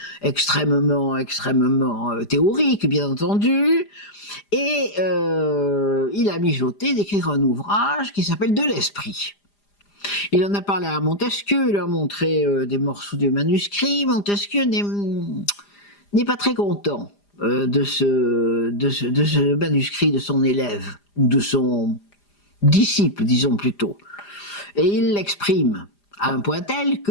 extrêmement théorique, bien entendu, et il a mijoté d'écrire un ouvrage qui s'appelle De l'Esprit. Il en a parlé à Montesquieu, il a montré des morceaux du manuscrit. Montesquieu n'est pas très content de ce manuscrit de son élève, ou de son disciple, disons plutôt. Et il l'exprime à un point tel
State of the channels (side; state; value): right; late; 4.9 ms